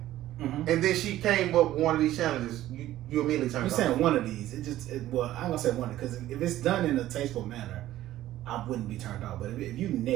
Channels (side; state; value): left; quieter; 14.1 dB